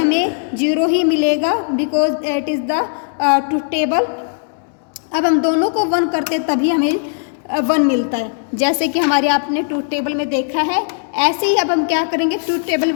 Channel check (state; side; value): silent; right; digital silence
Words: 0 ही मिलेगा because it is the truth table अब हम दोनों को 1 करते तभी हमें 1 मिलता है, जैसे कि हमारे आपने ट्रूथ टेबल में देखा है। ऐसे ही अब हम क्या करेंगे, ट्रूथ टेबल